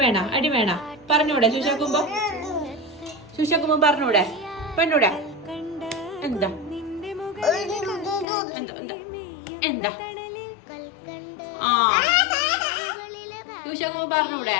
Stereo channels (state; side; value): drops out; right; at 8.2 s